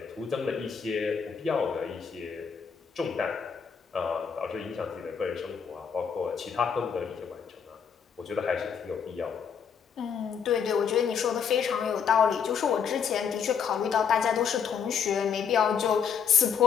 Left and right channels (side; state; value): right; quieter; 7.0 dB